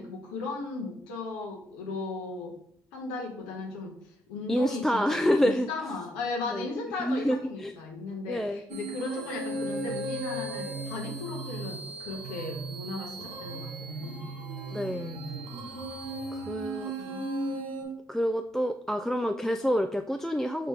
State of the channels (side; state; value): both; normal; correlation 0.75